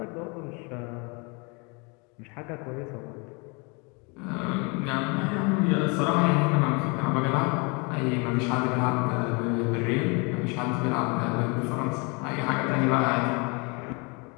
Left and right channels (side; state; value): right; quieter; 30.9 dB